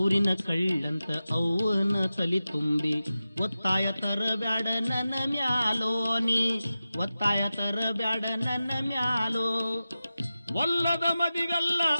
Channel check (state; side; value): inverted; both; correlation -0.94